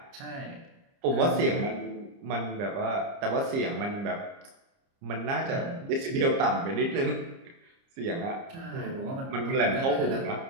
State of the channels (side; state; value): left; late; 30 ms